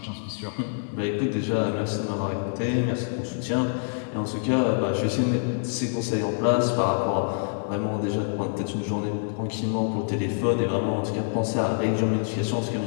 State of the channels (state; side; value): silent; right; digital silence